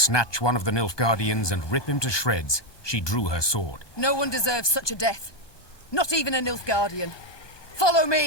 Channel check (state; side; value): late; right; 1.2 ms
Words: one of the Nilfgaardians and rip him to shreds, she drew her sword. No one deserves such a death. Not even a Nilfgaardian. Follow